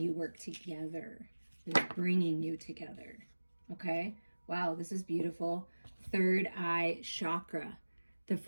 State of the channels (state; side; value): inverted; both; correlation -1.00